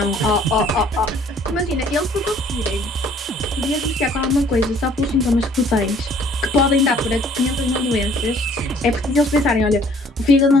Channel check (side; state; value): both; normal; correlation 0.57